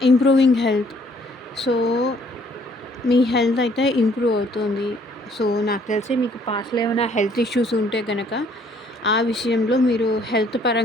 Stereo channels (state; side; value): normal; both; correlation 0.62